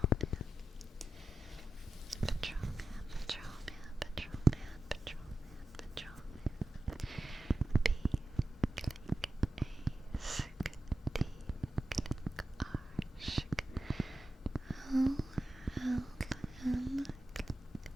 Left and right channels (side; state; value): both; normal; correlation 0.91